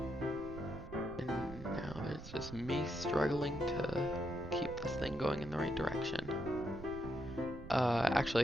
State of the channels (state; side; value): noise; right; rumble, 12 dB below the sound